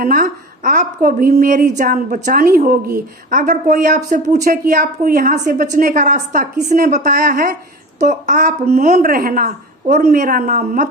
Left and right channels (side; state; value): both; normal; correlation 0.33